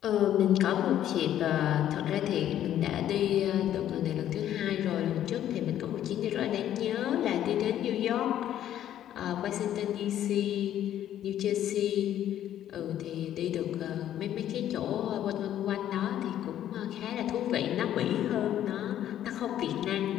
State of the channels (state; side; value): quieter; right; 11.4 dB